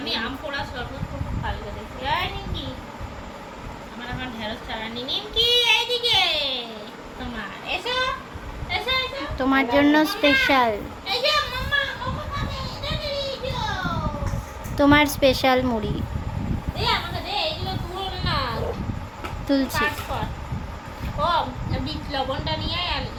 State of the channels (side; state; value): both; identical; correlation 1.00